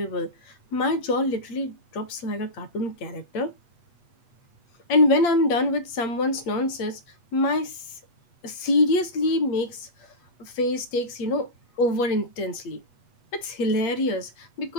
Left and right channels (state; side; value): late; right; 8.3 ms